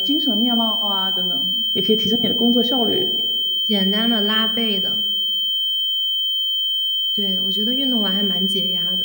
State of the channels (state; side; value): noise; right; hiss, 29 dB below the sound